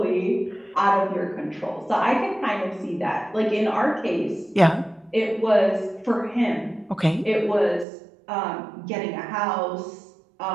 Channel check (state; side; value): drops out; left; at 7.9 s